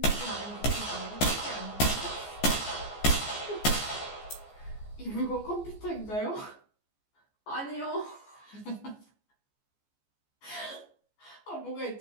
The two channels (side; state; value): right; late; 14 ms